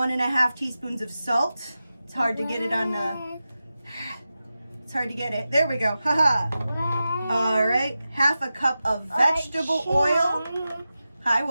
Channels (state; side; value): inverted; both; correlation -0.93